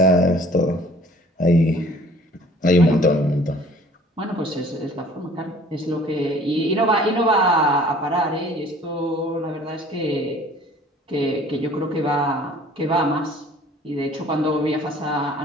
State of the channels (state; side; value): normal; both; correlation 0.52